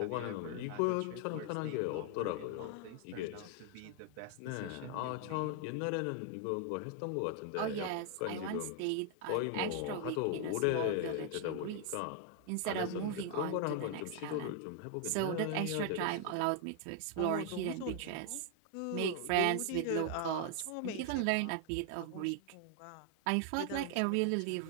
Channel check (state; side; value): different; both; correlation 0.00